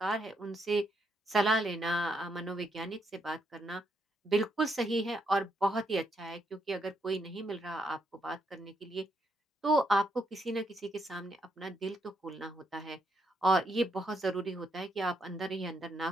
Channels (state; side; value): normal; both; correlation 0.77